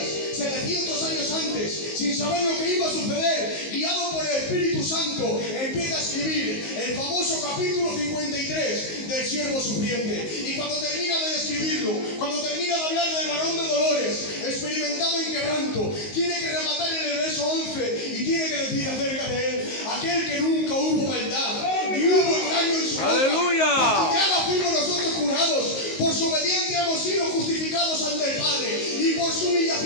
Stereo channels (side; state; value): right; late; 19 ms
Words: 700 años antes, sin saber lo que iba a suceder, guiado por el Espíritu Santo, empieza a escribir el famoso capítulo 53 del siervo sufriente. Y cuando termina de describirlo, cuando termina de hablar del varón de dolores, experimentado en quebranto, tiene que rematar en el verso 11 y tiene que decir acerca de él: aquel que nunca hubo maldad, ni hubo engaño en su boca. ¡Aleluya! Por su llaga fuimos nosotros curados, por su obediencia hemos sido justificados ante el Padre, y por su